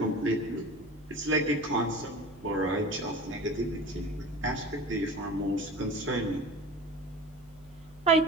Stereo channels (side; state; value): right; noise; hum, 25 dB below the sound